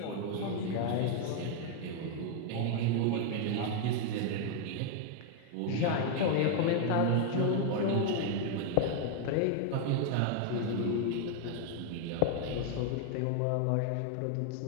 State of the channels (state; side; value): different; both; correlation 0.00